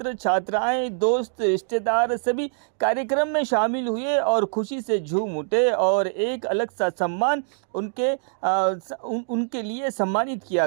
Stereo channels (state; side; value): silent; left; digital silence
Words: छात्राएं, दोस्त, रिश्तेदार सभी कार्यक्रम में शामिल हुए और खुशी से झूम उठे और एक अलग सा सम्मान उनके लिए सम्मानित किया